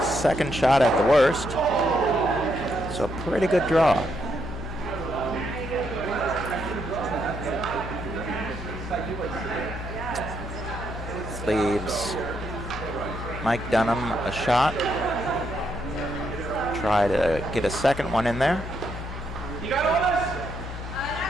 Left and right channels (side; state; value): left; noise; hum, 8 dB below the sound